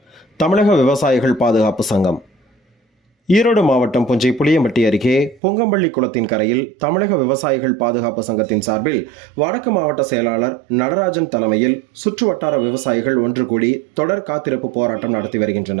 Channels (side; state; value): left; drops out; at 5.4 s